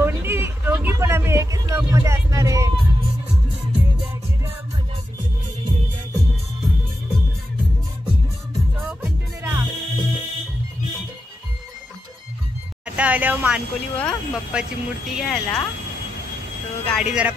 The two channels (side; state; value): both; normal; correlation 0.88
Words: पण आम्ही एकच ब्लॉग मध्ये असणार आहे. आता आल्यावर मानकोली व बाप्पाची मूर्ती घ्यायला. तो गाडी जरा